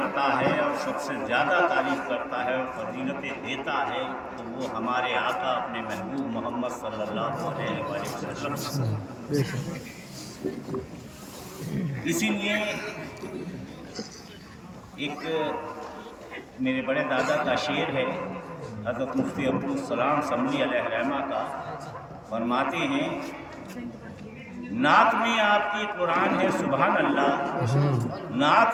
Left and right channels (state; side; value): identical; both; correlation 1.00